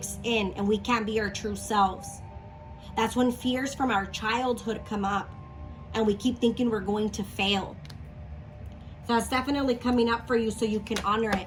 in and we can't be our true selves. That's when fears from our childhood come up and we keep thinking we're going to fail. So that's definitely coming up for you so you can honor it.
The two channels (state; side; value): identical; both; correlation 1.00